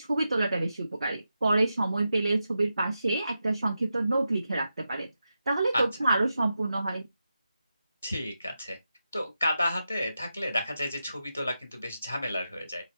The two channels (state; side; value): inverted; both; correlation -0.89